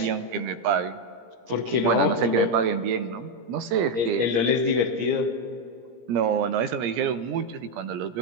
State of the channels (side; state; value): left; late; 17 ms